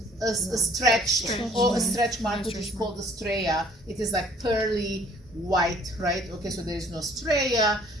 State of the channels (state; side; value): normal; both; correlation 0.56